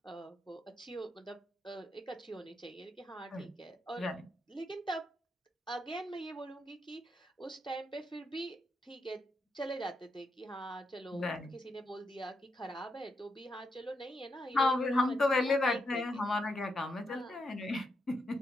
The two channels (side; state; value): both; normal; correlation 0.82